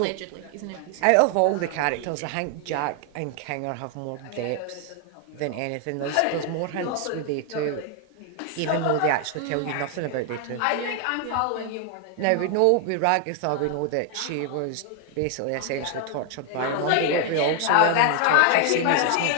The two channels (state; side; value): different; both; correlation 0.00